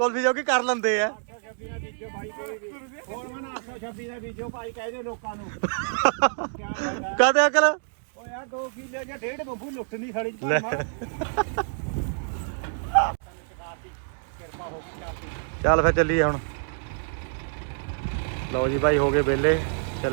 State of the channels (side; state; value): left; silent; digital silence